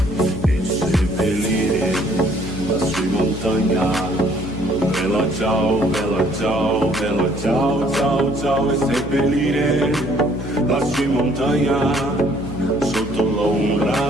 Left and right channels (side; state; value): left; noise; hum, 10 dB below the sound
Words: e seppellire lassù in montagna. Bella ciao, bella ciao, bella ciao, ciao, ciao. E seppellire lassù in montagna sotto